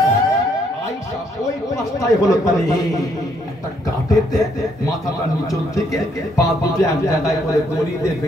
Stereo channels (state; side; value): normal; both; correlation 0.71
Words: আয়েশা ওই পাশটাই হলো তাহলে একটা গাটেতে মাথাটা নিচল থেকে পা দুটো এক জায়গায় করে দড়িতে